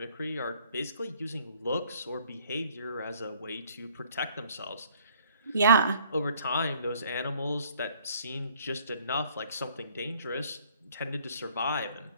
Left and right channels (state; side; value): inverted; both; correlation -0.60